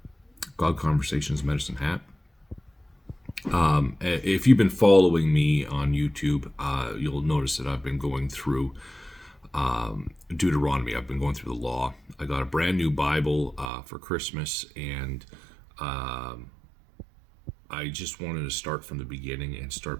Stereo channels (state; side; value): drops out; left; at 13.7 s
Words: God Conversations Medicine Hat. If you've been following me on YouTube, you'll notice that I've been going through Deuteronomy. I've been going through the law. I got a brand new Bible for Christmas, and I just wanted to start from the beginning and